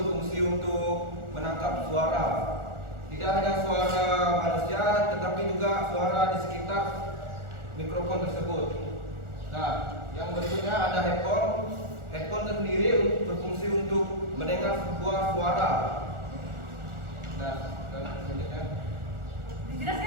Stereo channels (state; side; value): late; left; 1.4 ms